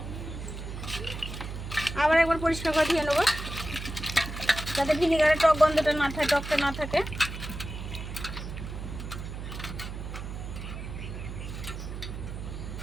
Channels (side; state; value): right; noise; hum, 8 dB below the sound